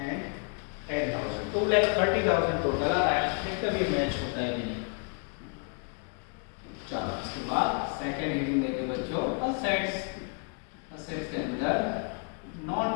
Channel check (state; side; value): quieter; right; 39.1 dB